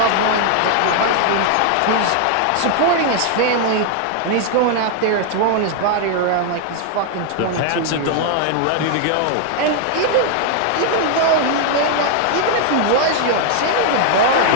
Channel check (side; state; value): both; different; correlation 0.00